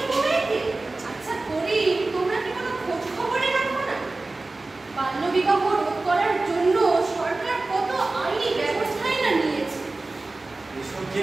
মেয়েকে? আচ্ছা গরিব, তোমরা কি কোনো খোঁজ খবরে রাখো না? বাল্যবিবাহ রোধ করার জন্য সরকার কত আইনি ব্যবস্থাই না নিয়েছে। এসব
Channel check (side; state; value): left; quieter; 3.2 dB